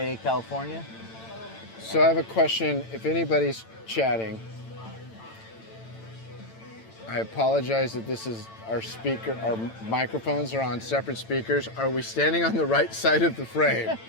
California. So I have a question. If anybody's chatting, I apologize that this is our speaker. Our microphones are on separate speakers. Are we standing on the right side of the frame?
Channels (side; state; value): right; late; 8.9 ms